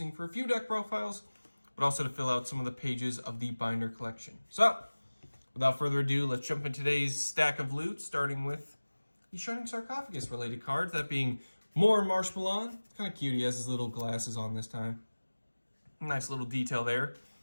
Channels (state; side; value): inverted; both; correlation -1.00